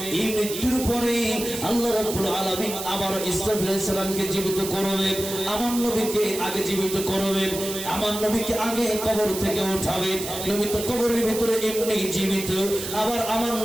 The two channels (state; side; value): noise; right; hiss, 7 dB below the sound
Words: এই মৃত্যুর পরে আল্লাহ রাব্বুল আলামিন আবার ইসরাফিল আলাইহিস সালামকে জীবিত করবে, আমার নবীকে আগে জীবিত করবে, আমার নবীকে আগে কবর থেকে উঠাবে। নবী তো কবরের ভিতরে এমনি জীবিত, আবার আমার